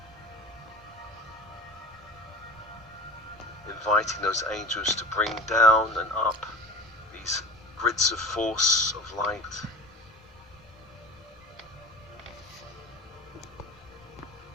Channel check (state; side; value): normal; both; correlation 0.37